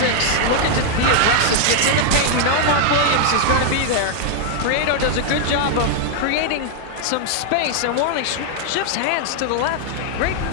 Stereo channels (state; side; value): different; both; correlation 0.00